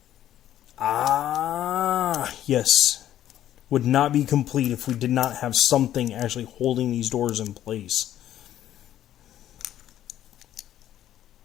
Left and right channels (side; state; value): right; quieter; 11.9 dB